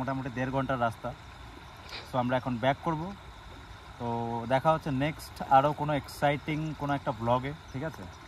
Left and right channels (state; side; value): identical; both; correlation 1.00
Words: 1.5 ঘন্টার রাস্তা। সো আমরা এখন ব্যাক করব। তো দেখা হচ্ছে নেক্সট আরও কোনো এক্সাইটিং কোনো একটা ব্লগে, ঠিক আছে?